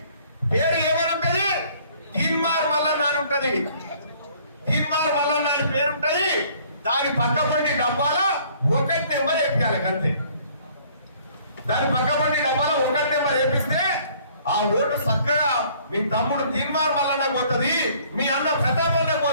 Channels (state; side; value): inverted; both; correlation -0.58